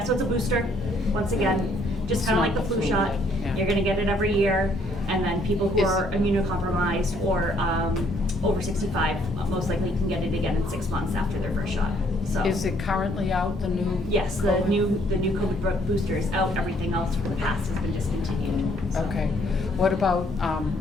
so it's a booster, once again, just It's kinda not like the the flu flu, shot. yeah. You're gonna get it every year, and then people who Is- are immunocompromised or, over 65, most likely can get it again in 6 months after their first shot, so. Is it currently out, the new? Yes, the COVID? new COVID booster is out, everything else from the past has been discontinued. So. Okay. What about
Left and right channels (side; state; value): both; normal; correlation 0.66